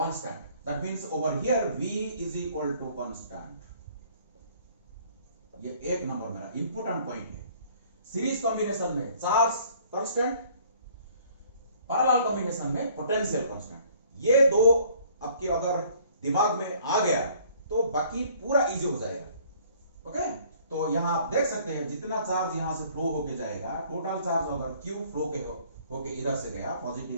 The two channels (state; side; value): inverted; both; correlation -0.57